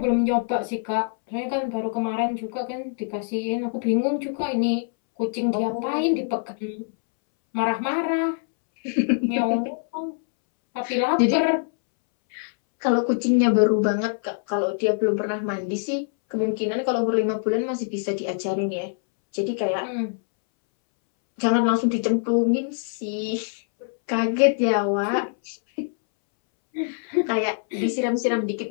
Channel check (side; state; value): right; silent; 62 dB below the other